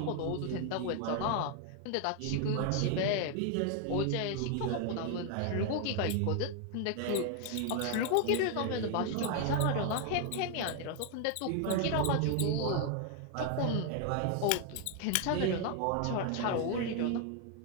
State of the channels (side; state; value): both; different; correlation 0.00